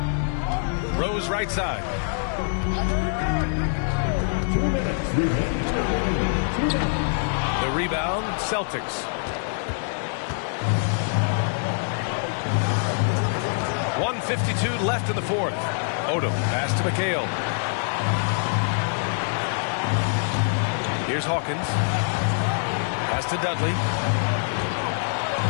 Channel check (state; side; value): silent; right; 62 dB below the other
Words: Rose right side. 2 minutes. The rebound, Celtics. 1:52 left in the 4th. Odom, pass to McHale. Here's Hawkins. Pass to Dudley.